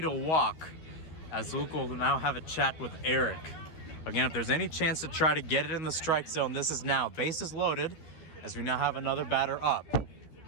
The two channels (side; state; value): right; late; 13 ms